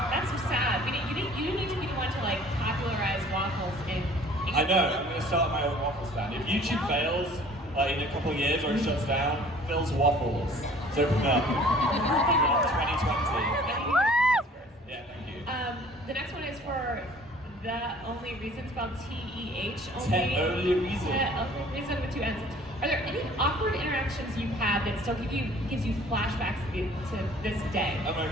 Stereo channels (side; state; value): both; normal; correlation 0.52